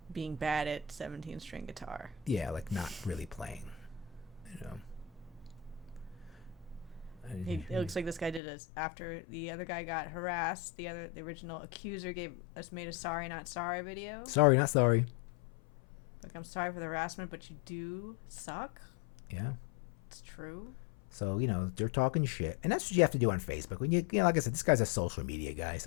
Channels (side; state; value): right; drops out; at 8.4 s